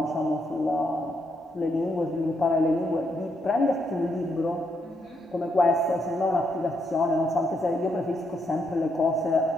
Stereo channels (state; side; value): normal; both; correlation 0.78